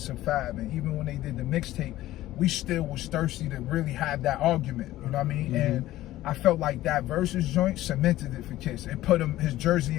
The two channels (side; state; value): right; quieter; 15.3 dB